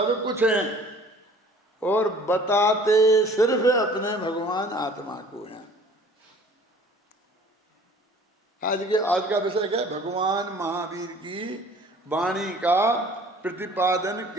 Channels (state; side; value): normal; both; correlation 0.51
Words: कुछ हैं और बताते सिर्फ अपने भगवान आत्मा को हैं। आज का विषय क्या है? भगवान महावीर की वाणी का प्रतिपादन